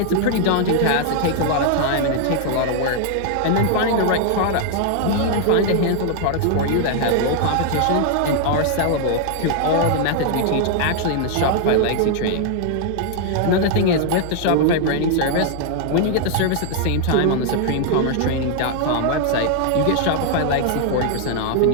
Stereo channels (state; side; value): different; both; correlation 0.00